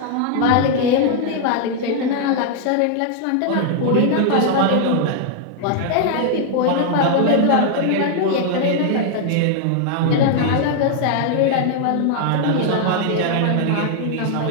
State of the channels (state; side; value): different; both; correlation 0.00